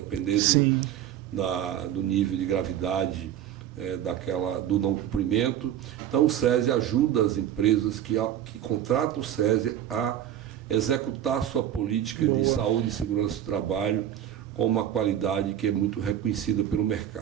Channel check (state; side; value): quieter; left; 10.8 dB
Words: do nível de gravidade do não cumprimento. Então o SESI ajuda as empresas que contratam o SESI a executar sua política de saúde e segurança do trabalho com uma qualidade que é muito reconhecida pelo